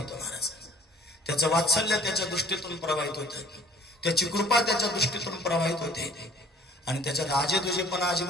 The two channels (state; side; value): normal; both; correlation 0.51